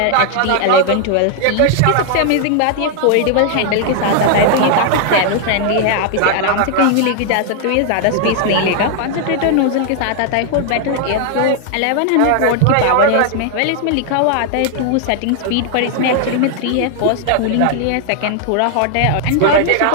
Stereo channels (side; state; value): both; different; correlation 0.00